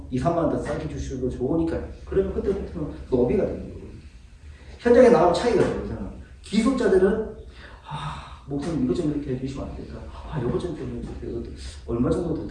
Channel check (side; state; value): both; identical; correlation 1.00